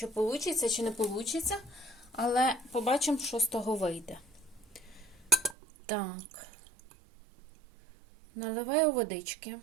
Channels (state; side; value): drops out; left; at 5.6 s